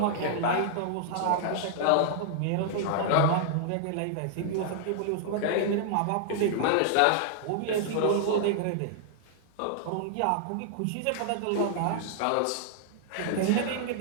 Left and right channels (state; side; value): different; both; correlation -0.01